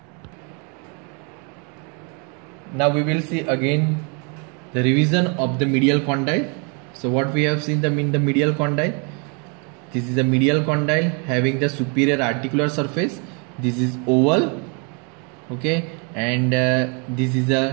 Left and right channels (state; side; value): quieter; left; 35.7 dB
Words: Now we will see again the revision of the medial condyle. So what we have seen in the medial condyle, this is a medial condyle having the superior articular surface. This is oval, okay, and this is